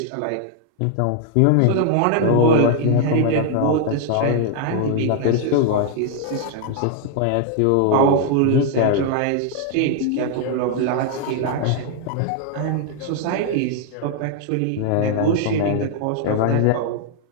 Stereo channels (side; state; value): both; different; correlation 0.00